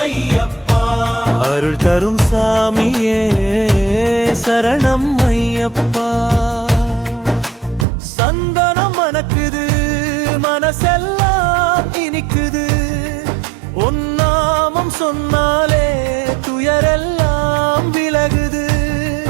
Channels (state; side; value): drops out; left; at 7.9 s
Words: ஐயப்பா அருள் தரும் சாமியே சரணம் ஐயப்பா சந்தனம் மணக்குது மனசெல்லாம் இனிக்குது உன் நாமம் சொன்னாலே துயரெல்லாம் விலகுது